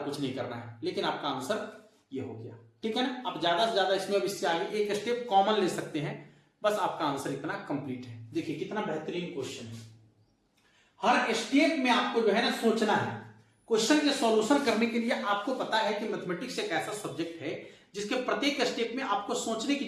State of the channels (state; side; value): identical; both; correlation 1.00